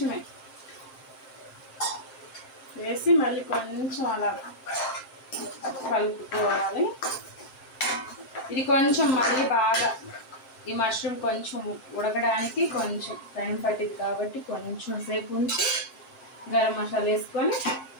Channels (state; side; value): late; right; 7.7 ms